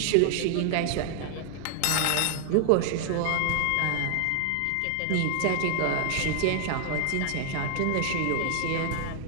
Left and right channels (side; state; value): both; different; correlation 0.00